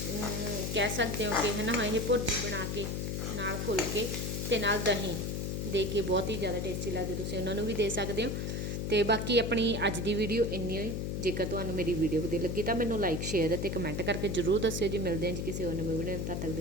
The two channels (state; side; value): noise; left; hum, 2 dB below the sound